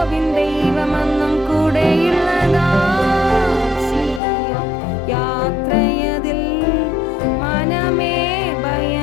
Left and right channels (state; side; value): drops out; right; at 4.2 s